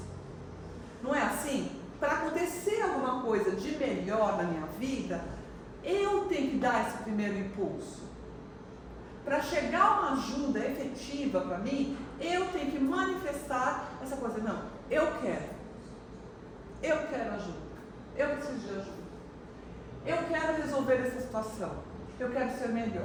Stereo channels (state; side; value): identical; both; correlation 1.00